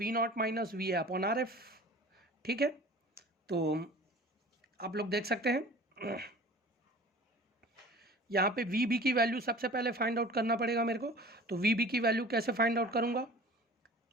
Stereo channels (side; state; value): both; normal; correlation 0.43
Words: not minus V A upon RF, ठीक है। तो आप लोग देख सकते हैं यहाँ पे वी बी की वैल्यू सबसे पहले फाइंड आउट करना पड़ेगा मेरे को। तो वी बी की वैल्यू कैसे फाइंड आउट करूंगा,